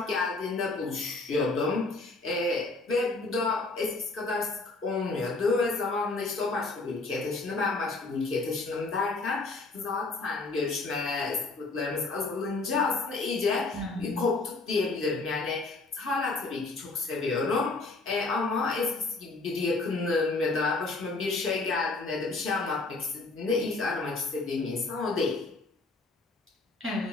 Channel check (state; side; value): quieter; right; 3.5 dB